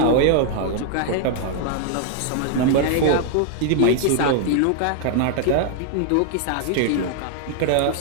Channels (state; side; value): different; both; correlation 0.00